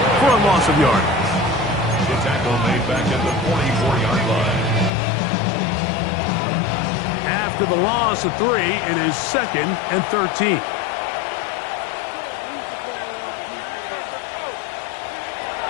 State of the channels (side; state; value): right; drops out; at 4.9 s